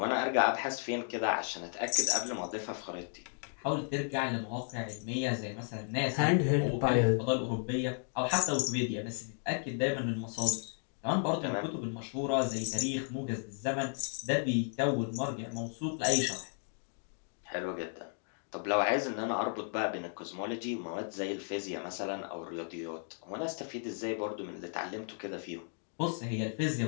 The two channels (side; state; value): right; silent; 55 dB below the other